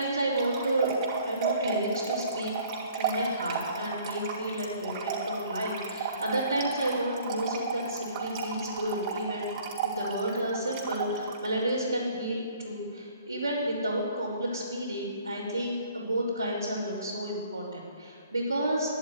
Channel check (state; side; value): inverted; both; correlation -0.56